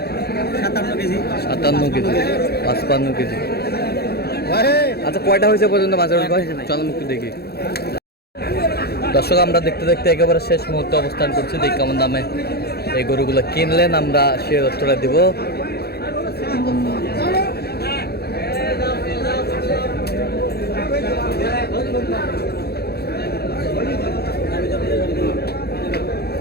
57 কেজি। 57 KG 55 KG. আচ্ছা কয়টা হয়েছে পর্যন্ত মাছের ভাই? চলো একটু দেখি। দর্শক আমরা দেখতে দেখতে একেবারে শেষ মুহূর্তে অবস্থান করছি। দেখি কেমন দামে এই গরুগুলো কিনলেন, আমরা সে তথ্যটা দিব।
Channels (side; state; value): right; late; 0.46 ms